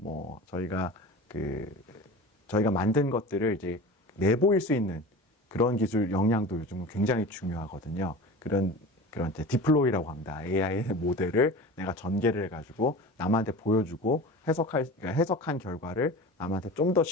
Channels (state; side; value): normal; both; correlation 0.34